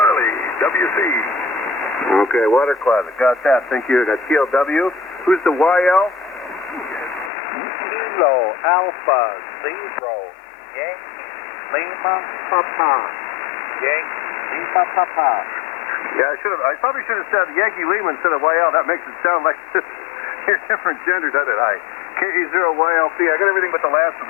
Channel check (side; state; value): right; drops out; at 7.3 s